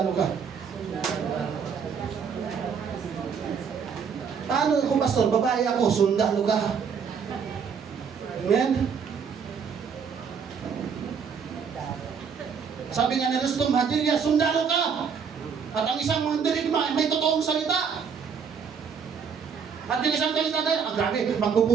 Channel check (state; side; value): quieter; left; 6.5 dB